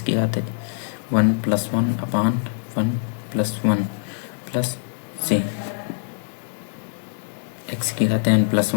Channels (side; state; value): right; silent; digital silence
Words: की घात 1 प्लस 1 अपान 1 प्लस 1 प्लस सी, एक्स की घात n प्लस